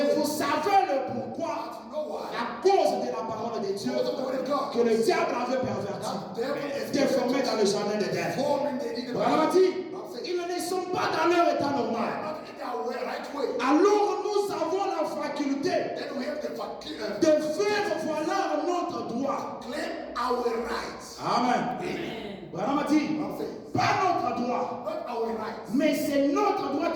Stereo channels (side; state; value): both; identical; correlation 1.00